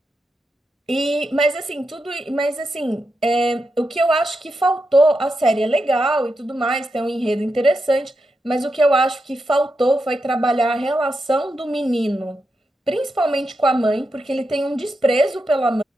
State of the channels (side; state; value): both; normal; correlation 0.86